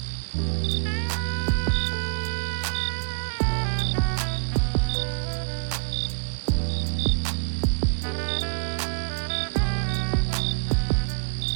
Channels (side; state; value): left; silent; digital silence